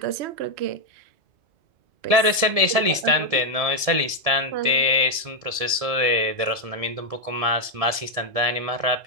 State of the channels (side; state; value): left; late; 1.7 ms